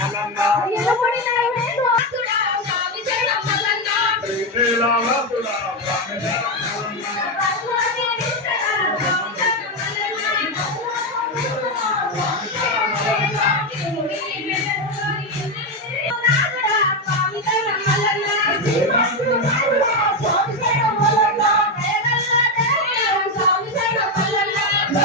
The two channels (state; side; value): normal; both; correlation 0.09